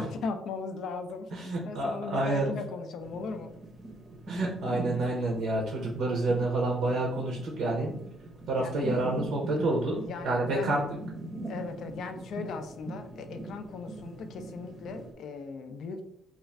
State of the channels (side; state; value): both; normal; correlation 0.67